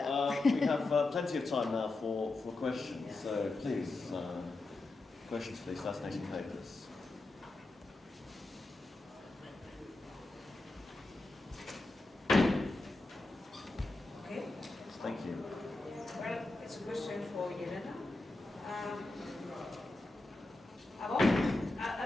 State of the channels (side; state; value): right; quieter; 3.0 dB